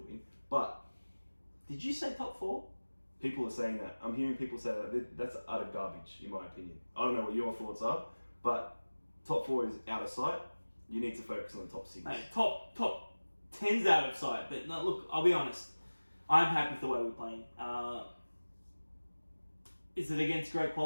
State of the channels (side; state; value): both; inverted; correlation -1.00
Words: But did you say top 4? People are saying that. I'm hearing people say that. That's utter garbage, in my opinion. I don't know what your thoughts are, but top 4 is out of sight. You need to focus on the top 6. Mate, top 10's out of sight. But no, look, I'll be honest. I'm happy with the way we're playing. Is it against great